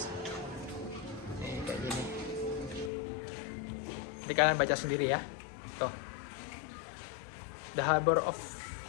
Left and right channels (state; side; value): drops out; right; at 2.9 s